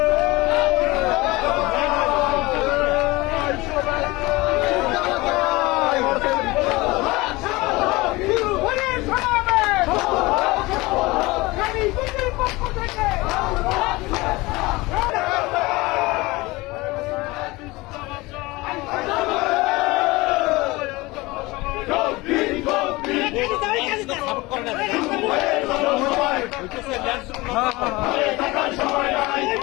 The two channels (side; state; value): right; quieter; 21.9 dB